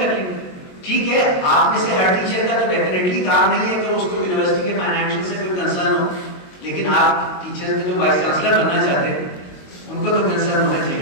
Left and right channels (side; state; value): right; late; 22 ms